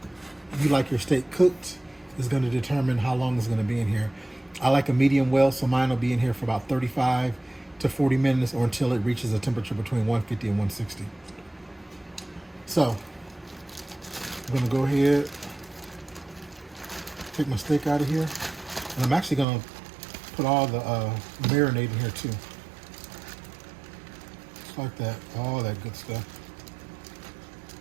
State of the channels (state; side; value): drops out; left; at 19.5 s